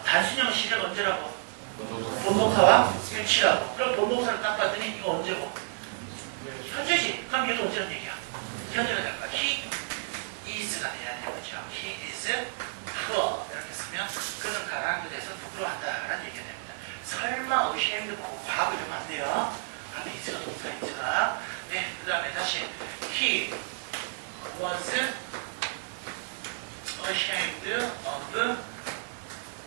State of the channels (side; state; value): left; silent; digital silence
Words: 단순형 시작 언제라고? 본동사와 일치라고. 그럼 본동사를 딱 봤더니 이거 언제고? 현재지. 그럼 얘도 언제는 얘기야? 현재가 될 거야. He is가 돼야 되는 거죠. He is poor. 이렇게 쓰면 그는 가난한 것에 대해서 부끄러워한다라는 얘기가 됩니다. 설마 ashamed 보고 과거 이러면 안 돼요. 그런데 is가 동사 is가. 네, 그 다음에 다시 He was ashamed of